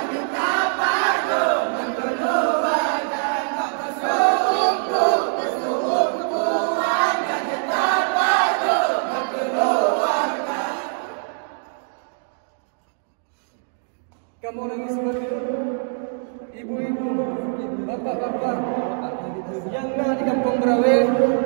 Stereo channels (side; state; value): left; silent; 59 dB below the other